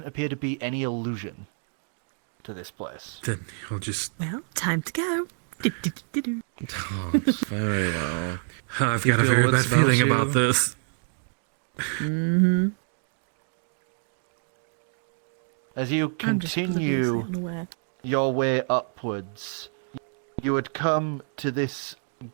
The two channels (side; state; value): left; silent; 55 dB below the other